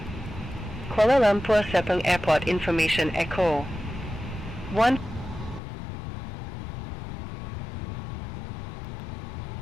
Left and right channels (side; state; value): right; drops out; at 5.6 s